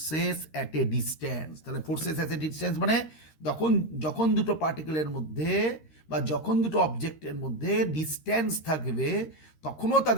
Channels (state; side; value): late; right; 13 ms